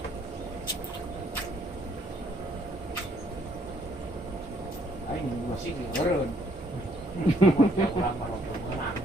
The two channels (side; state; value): both; normal; correlation 0.66